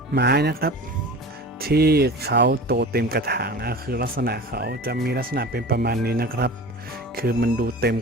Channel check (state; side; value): normal; both; correlation 0.36